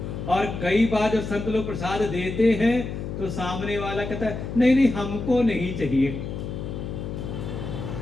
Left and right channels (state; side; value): noise; left; hum, 6 dB below the sound